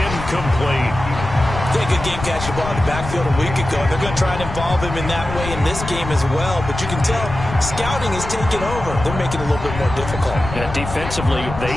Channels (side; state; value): left; noise; rumble, 8 dB below the sound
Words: They had a good game catching the ball in the backfield a week ago. They're going to try and involve him in that way in this game as well. But you can tell scouting is taking over. They're making it a little bit more difficult. Yeah, defensively, they